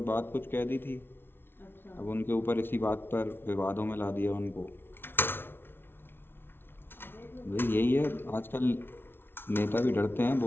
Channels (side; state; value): right; late; 0.11 ms